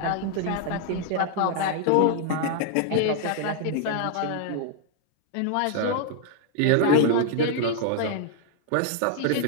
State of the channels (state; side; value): different; both; correlation -0.01